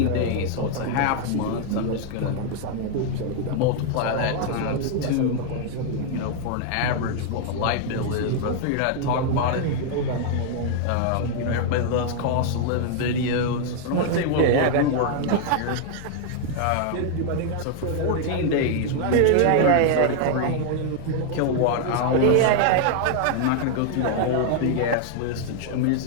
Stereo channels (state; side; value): different; both; correlation 0.00